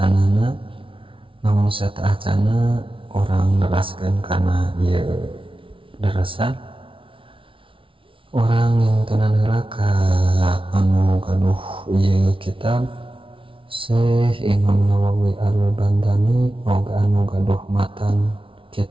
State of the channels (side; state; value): left; late; 0.25 ms